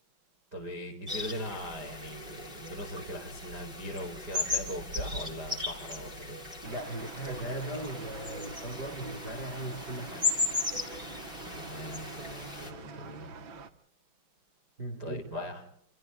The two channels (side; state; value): left; late; 5.4 ms